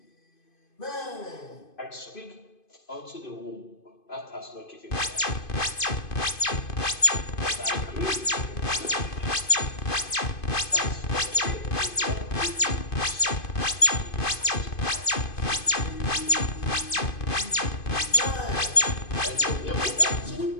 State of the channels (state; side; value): late; right; 2.5 ms